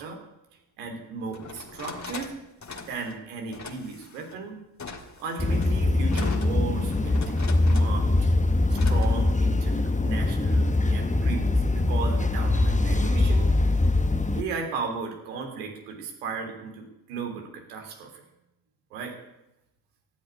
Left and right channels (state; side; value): normal; both; correlation 0.86